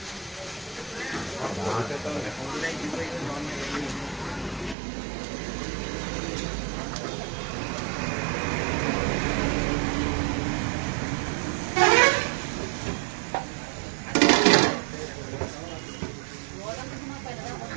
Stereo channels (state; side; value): drops out; left; at 4.8 s